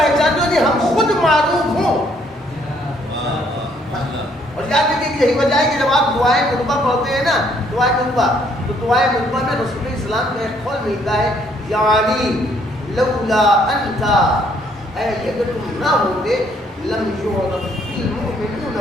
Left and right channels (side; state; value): both; normal; correlation 0.67